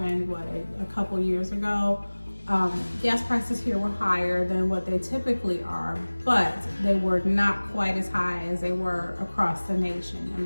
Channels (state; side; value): inverted; both; correlation -1.00